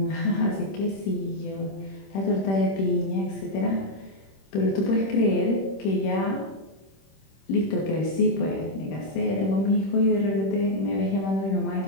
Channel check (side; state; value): right; late; 26 ms